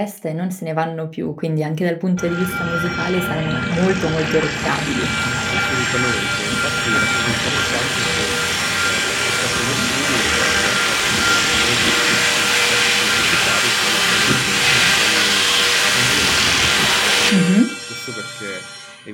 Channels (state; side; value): identical; both; correlation 1.00